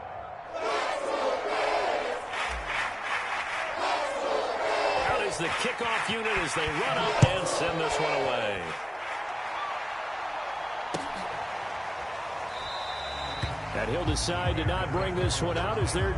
The kickoff unit as they run up and send this one away. And he'll decide to not bring this one out as their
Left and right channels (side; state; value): both; identical; correlation 1.00